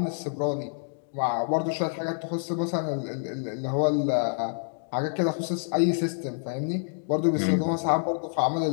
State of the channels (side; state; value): right; silent; digital silence